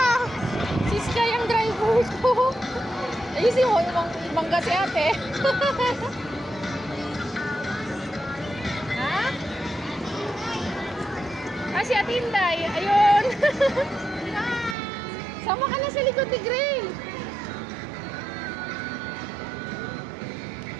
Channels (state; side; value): drops out; left; at 14.8 s